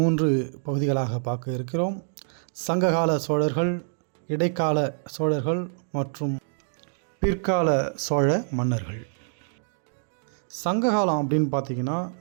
பகுதிகளாக பார்க்க இருக்கிறோம். சங்ககால சோழர்கள், இடைக்கால சோழர்கள் மற்றும் பிற்கால சோழ மன்னர்கள். சங்ககாலம் அப்படின்னு பார்த்திங்கன்னா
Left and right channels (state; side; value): silent; left; digital silence